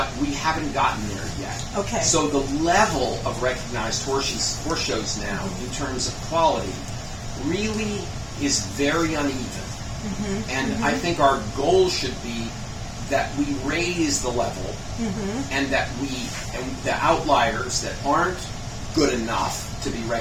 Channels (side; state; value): both; identical; correlation 1.00